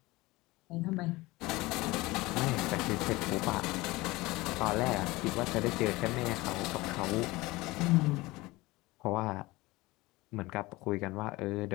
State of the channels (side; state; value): right; quieter; 20.9 dB